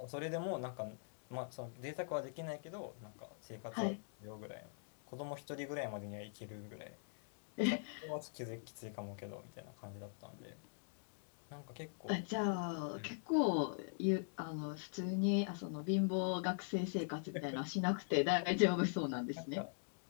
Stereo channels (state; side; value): silent; right; digital silence